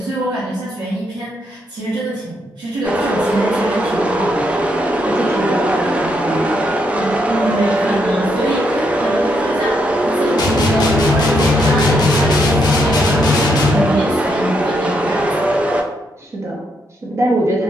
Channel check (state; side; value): normal; both; correlation 0.77